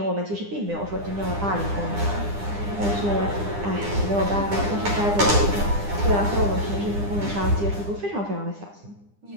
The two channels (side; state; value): left; late; 9.9 ms